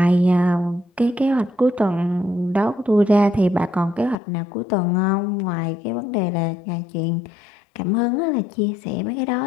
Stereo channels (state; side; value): drops out; right; at 4.2 s